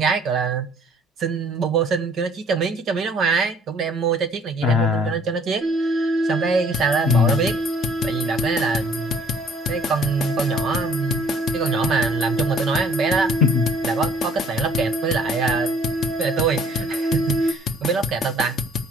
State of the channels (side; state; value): both; normal; correlation 0.57